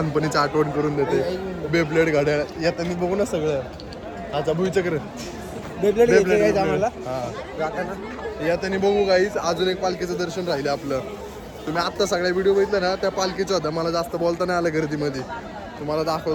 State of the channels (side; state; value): both; identical; correlation 1.00